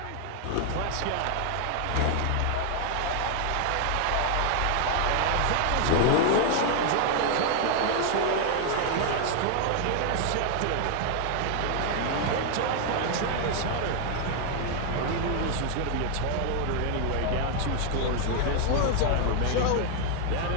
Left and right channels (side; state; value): both; different; correlation 0.00